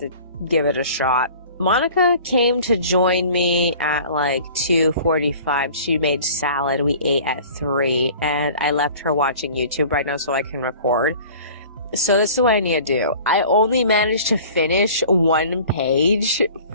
give it a shot. Monica came to join me at like 2:45. She made salad. We ate at 3, and I left her watching YouTube right now so I can record. So this is what I need to do. I only managed to finish one page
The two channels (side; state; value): both; inverted; correlation -0.45